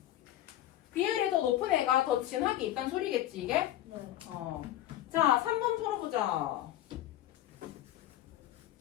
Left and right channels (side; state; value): right; quieter; 13.3 dB